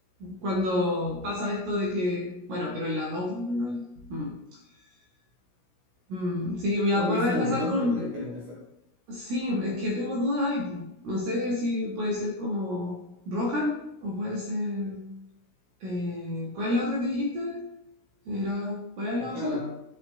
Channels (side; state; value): left; late; 16 ms